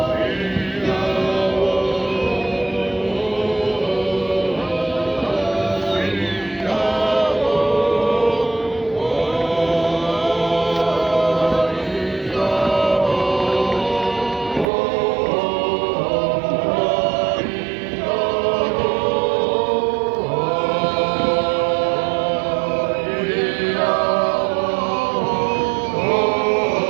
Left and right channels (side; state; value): left; drops out; at 14.7 s